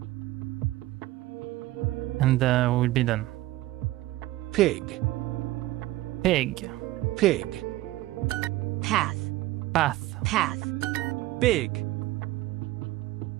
and we'll be done. Pig. Pig. Pig. Path. Path. Path. Big.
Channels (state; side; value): quieter; left; 16.8 dB